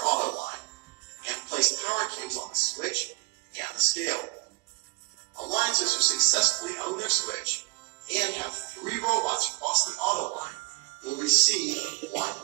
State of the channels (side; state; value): left; quieter; 26.7 dB